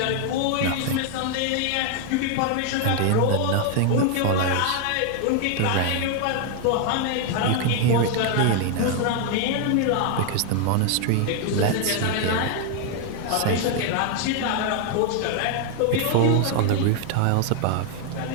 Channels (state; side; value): different; both; correlation 0.00